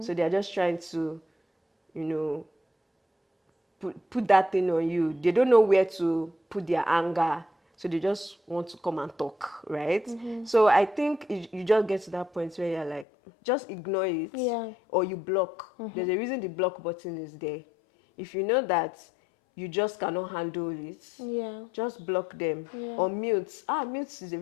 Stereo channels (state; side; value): drops out; right; at 13.1 s